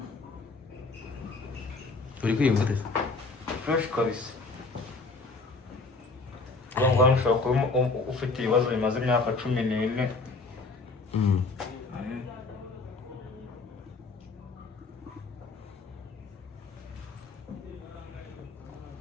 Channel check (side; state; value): right; quieter; 3.8 dB